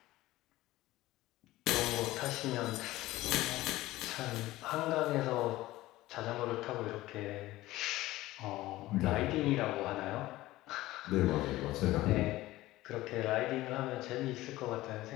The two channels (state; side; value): quieter; right; 17.2 dB